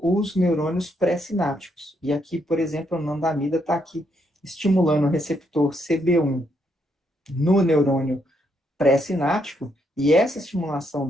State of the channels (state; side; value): normal; both; correlation 0.76